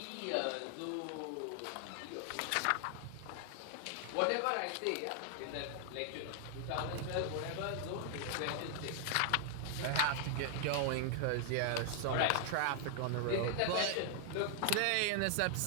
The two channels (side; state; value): both; different; correlation 0.00